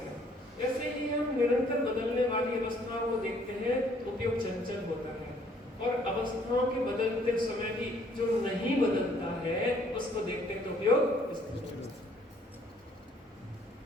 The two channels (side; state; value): both; normal; correlation 0.62